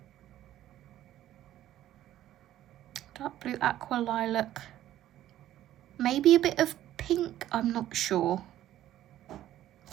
dark blue, aqua, lilac, maybe a bit of pink, I'm not sure.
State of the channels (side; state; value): left; quieter; 13.0 dB